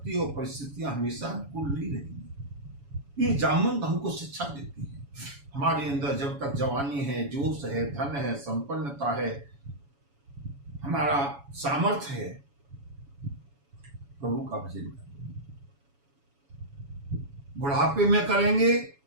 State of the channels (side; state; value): left; late; 7.1 ms